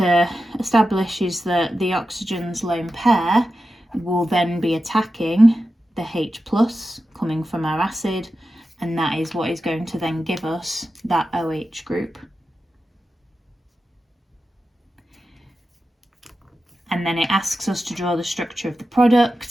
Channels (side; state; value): both; normal; correlation 0.92